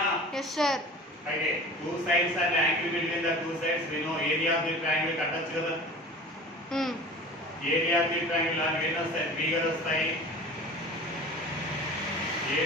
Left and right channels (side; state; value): both; normal; correlation 0.39